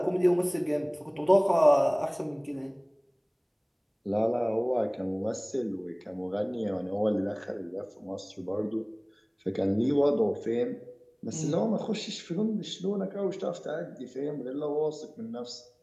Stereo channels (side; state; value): both; identical; correlation 1.00